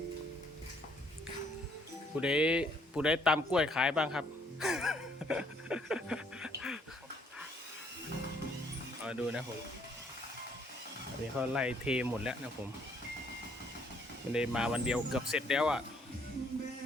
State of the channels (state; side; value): normal; both; correlation 0.66